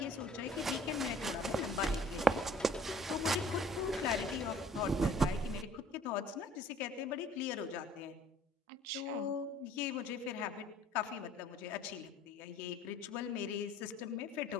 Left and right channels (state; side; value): normal; both; correlation 0.54